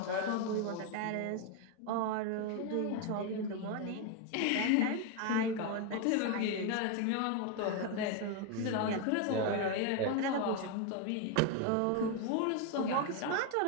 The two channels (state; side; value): different; both; correlation 0.01